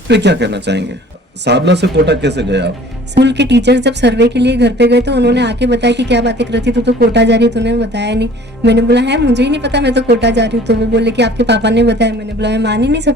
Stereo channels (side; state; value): both; normal; correlation 0.50